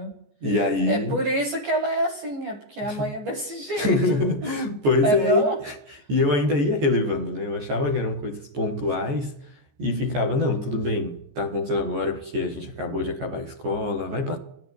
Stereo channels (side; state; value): left; late; 14 ms